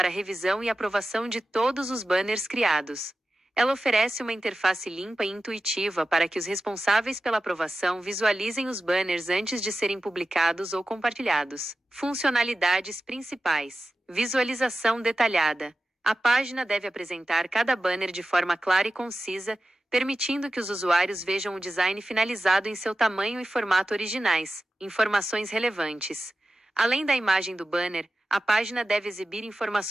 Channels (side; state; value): both; normal; correlation 0.94